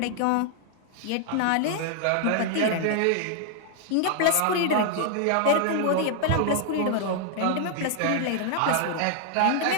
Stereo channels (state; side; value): different; both; correlation 0.00